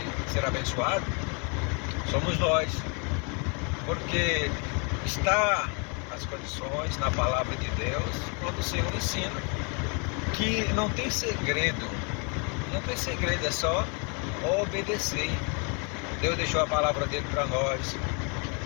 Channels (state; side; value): quieter; right; 35.2 dB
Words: ser abençoado somos nós, porque está as condições na palavra de Deus, quando o Senhor ensina que não tem segredo, é só obedecer. Deus deixou a palavra dele para nós,